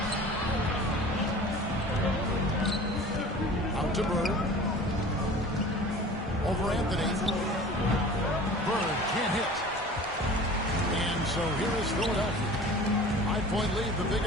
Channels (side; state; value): both; normal; correlation 0.41